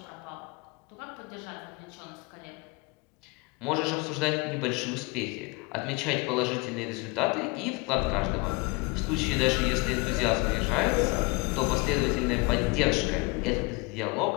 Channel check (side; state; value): right; quieter; 27.3 dB